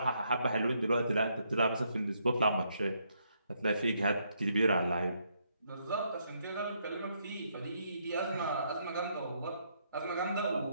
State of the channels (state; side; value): inverted; both; correlation -0.75